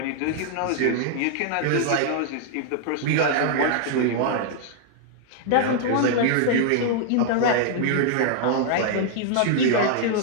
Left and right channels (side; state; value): both; different; correlation 0.00